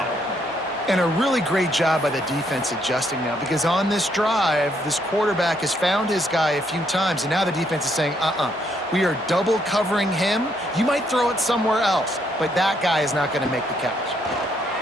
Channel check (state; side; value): normal; both; correlation 0.72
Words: And a really great job by the defense adjusting now, because on this drive, this quarterback has found his guy a few times, and now the defense is saying, we are double covering him. You might throw it somewhere else, but that guy is not going to make the catch.